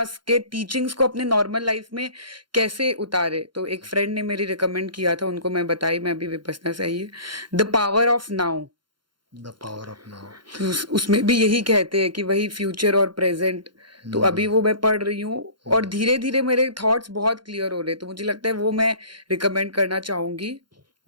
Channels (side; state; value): left; late; 0.72 ms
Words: के टीचिंग्स को अपने नॉर्मल लाइफ में कैसे उतारे। तो एक फ्रेंड ने मेरी रिकमेंड किया था, उनको मैं बताई, मैं अभी विपसना से आई है, the power of now. The power of now. उसमें भी यही कहते हैं कि वही फ्यूचर और प्रेजेंट। तो अभी वो मैं पढ़ रही हूँ और धीरे धीरे मेरे थॉट्स बहुत क्लियर हो रहे हैं, तो मुझे लगता है वो मैं रिकमेंड करना चाहूंगी।